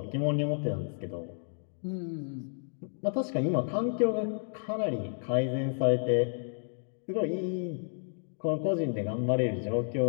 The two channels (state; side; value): silent; right; digital silence